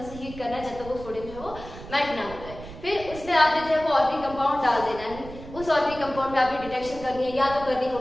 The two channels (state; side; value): noise; right; rumble, 14 dB below the sound